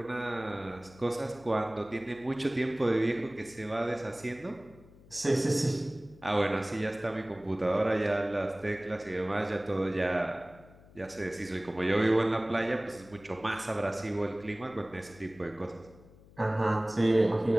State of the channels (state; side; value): noise; left; hum, 23 dB below the sound